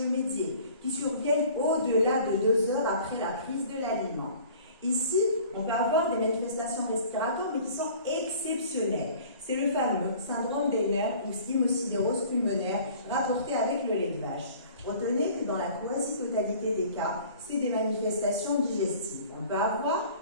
qui surviennent au-delà de 2 heures après la prise de l'aliment. Ici, on peut avoir des manifestations respiratoires, mais qui sont exceptionnelles. C'est le fameux syndrome des nerfs ou hémocidérose pulmonaire rapporté avec le lait de vache. Retenez que dans la quasi-totalité des cas, c'est des manifestations digestives. On peut avoir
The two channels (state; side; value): inverted; both; correlation -0.48